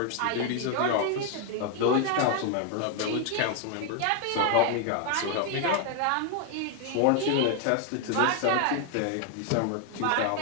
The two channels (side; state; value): both; different; correlation 0.01